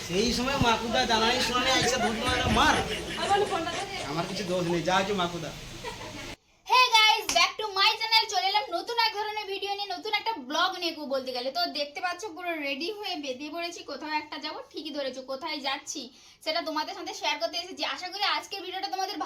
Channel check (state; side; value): identical; both; correlation 1.00